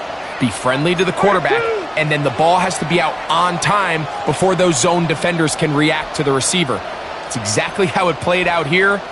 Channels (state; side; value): identical; both; correlation 1.00